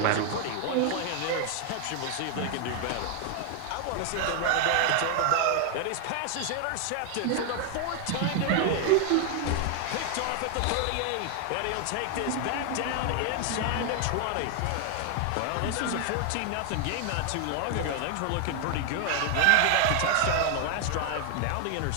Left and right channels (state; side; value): different; both; correlation 0.00